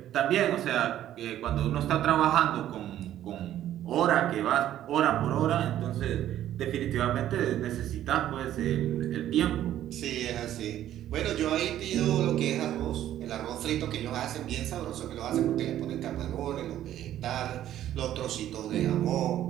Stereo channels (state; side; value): quieter; left; 12.1 dB